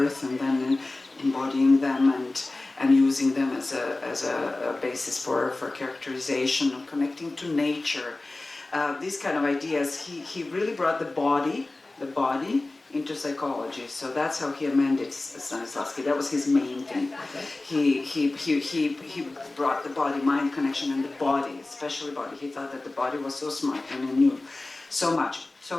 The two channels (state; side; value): quieter; right; 3.0 dB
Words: and then embodying them and using them as a basis for characterization and connecting to nature. These kind of ideas, he really brought the body into psychology. So that's how he amended Stanislavski. That was his main thing. He brought the body-mind connection and the body, especially body. He thought that the body was so smart and he knew so much.